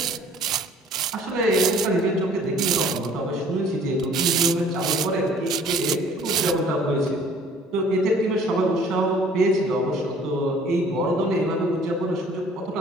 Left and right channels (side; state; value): both; normal; correlation 0.54